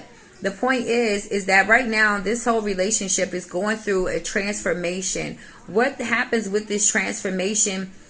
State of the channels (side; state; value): both; identical; correlation 1.00